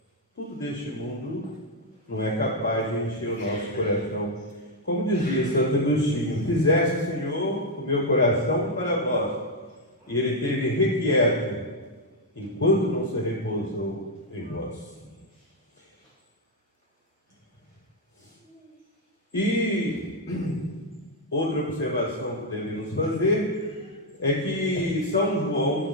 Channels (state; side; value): normal; both; correlation 0.01